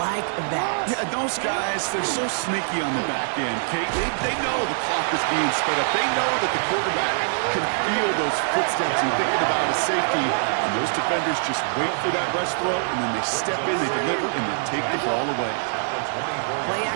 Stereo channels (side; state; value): left; silent; digital silence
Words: like that. Yeah, those guys, they're so sneaky on the back end, Kate. They know the clock is being sped up. They know that the quarterback can feel those footsteps and thinking about a safety. And those defenders just wait for that rush throw, and then they step in, they deliver, and then take the ball away. Play